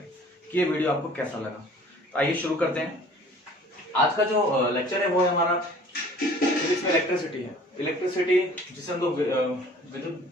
कि ये वीडियो आपको कैसा लगा। तो आइए शुरू करते हैं। आज का जो लेक्चर है वो है हमारा फिजिक्स में इलेक्ट्रिसिटी है। इलेक्ट्रिसिटी जिसे हम लोग विद्युत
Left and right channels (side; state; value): both; normal; correlation 0.50